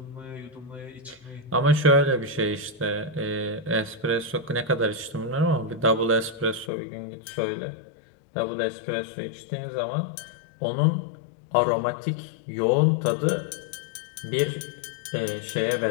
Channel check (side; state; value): right; drops out; at 6.7 s